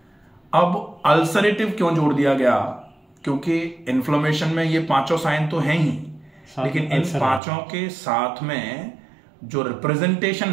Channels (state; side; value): drops out; left; at 7.4 s